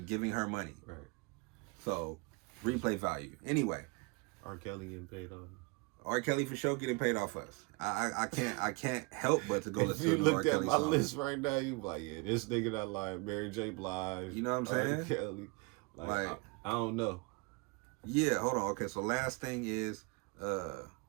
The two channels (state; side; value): quieter; left; 29.0 dB